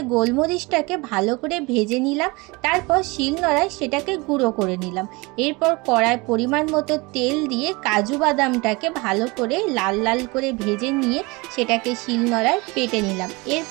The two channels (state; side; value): quieter; left; 25.1 dB